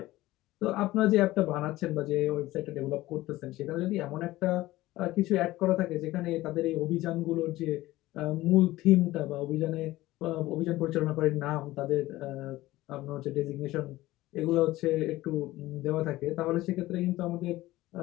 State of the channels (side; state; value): right; quieter; 17.3 dB